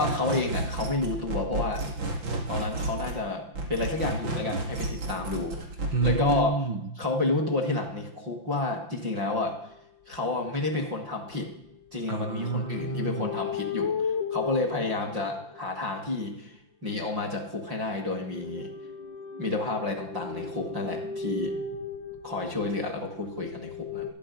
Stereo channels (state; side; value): late; left; 5.7 ms